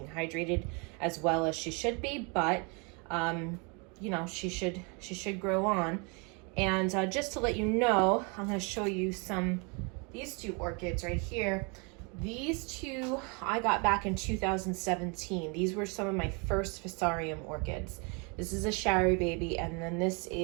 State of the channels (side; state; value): left; quieter; 32.6 dB